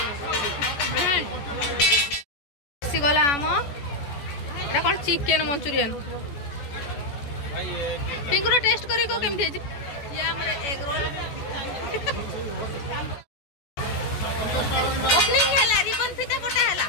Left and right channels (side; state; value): right; late; 14 ms